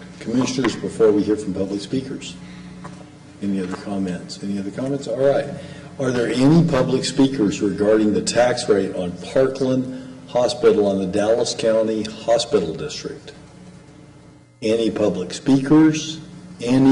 commissioners before we hear from public speakers? Any other comments? Any other comments? All right. Are there any public speakers regarding the tax rate on Parkland Hospital on the Dallas County Hospital District? Any public speakers?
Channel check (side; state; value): both; identical; correlation 1.00